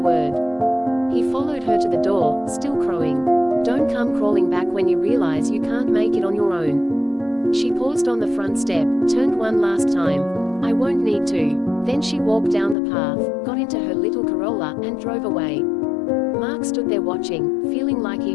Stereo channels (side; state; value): right; drops out; at 12.8 s